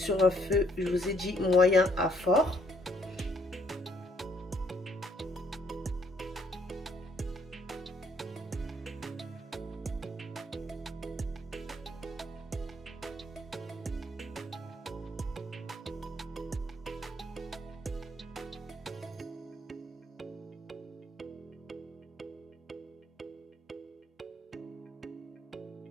un feu, je vous ai dit moyen à fort.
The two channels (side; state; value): both; normal; correlation 0.67